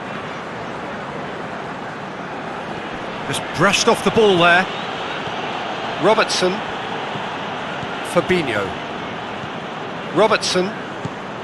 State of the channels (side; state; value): both; identical; correlation 1.00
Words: Just brushed off the ball there. Robertson. Fabinho. Robertson.